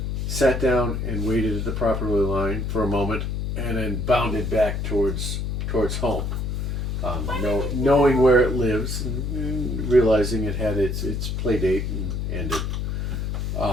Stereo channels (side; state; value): left; noise; hum, 2 dB below the sound